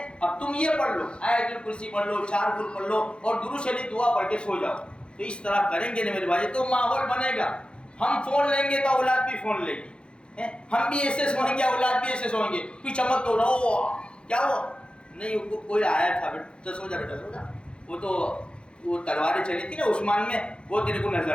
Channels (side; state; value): right; late; 0.055 ms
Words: اب تم یہ پڑھ لو، آیت الکرسی پڑھ لو، 4 کل پڑھ لو اور درود شریف دعا پڑھ کے سو جاؤ. تو اس طرح کریں گے نا میرے بھائی تو ماحول بنے گا. ہم فون لیں گے تو اولاد بھی فون لے گی، ہم بھی ایسے سوئیں گے اولاد بھی ایسے سوئیں گے. کوئی چمک تو رہو کیا ہوا نہیں، کوئی آیا تھا بیٹا سو جا، بیٹا سو جا. وہ تلواریں چلی تھی نا عثمان میں، وہ تیرے کو نظر